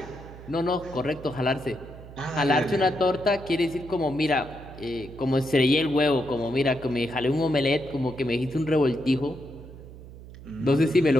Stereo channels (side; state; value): right; noise; hum, 16 dB below the sound